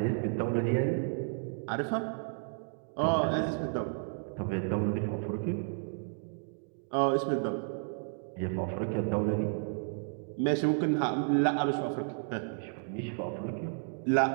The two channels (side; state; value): left; silent; 56 dB below the other